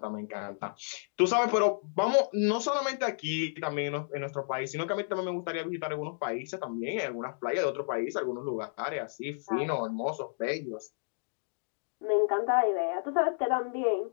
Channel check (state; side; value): silent; right; digital silence